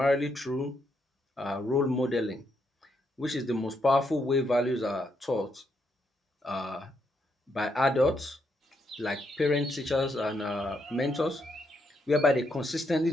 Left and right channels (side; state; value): both; normal; correlation 0.78